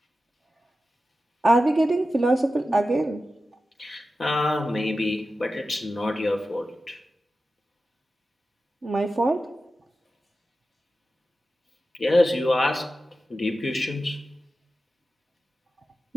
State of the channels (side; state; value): both; normal; correlation 0.93